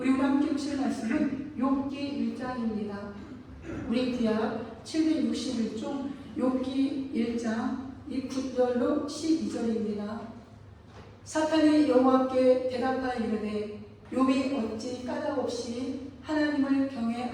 우리 함께 보실 말씀은 욥기 1장입니다. 우리 구약 761쪽 욥기 1장 9절로 12절입니다. 사탄이 여호와께 대답하여 이르되 욥이 어찌 까닭없이 하나님을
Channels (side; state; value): both; identical; correlation 1.00